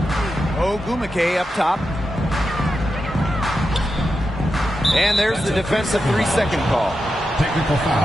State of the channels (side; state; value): both; normal; correlation 0.89